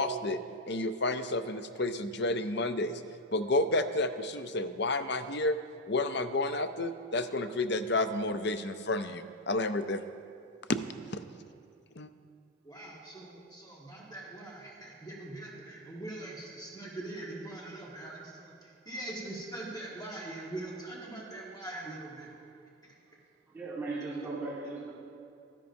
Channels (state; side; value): normal; both; correlation 0.03